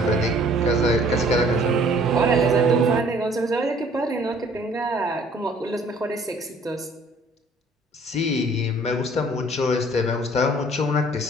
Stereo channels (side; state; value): both; normal; correlation 0.56